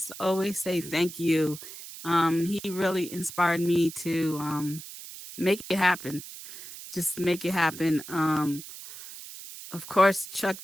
always say thank you. He really inspired me to make it happen. Just make it happen. Of course, Chuck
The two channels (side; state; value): right; noise; hiss, 13 dB below the sound